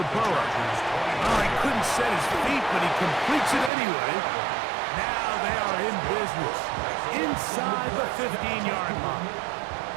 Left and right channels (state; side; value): drops out; left; at 3.7 s